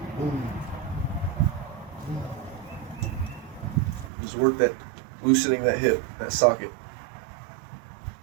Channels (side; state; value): left; drops out; at 4.1 s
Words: Just work that, loosening that hip, that socket.